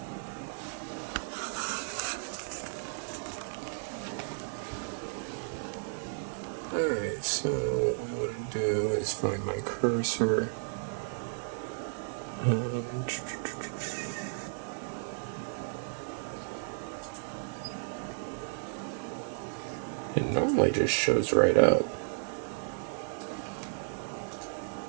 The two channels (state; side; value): silent; left; digital silence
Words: Alright, so what we want to do is find my cursor. It normally just shows right up.